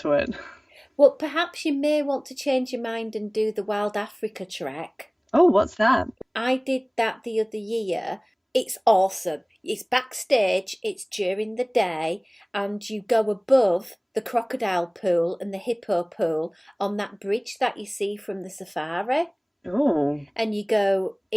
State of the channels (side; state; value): both; identical; correlation 1.00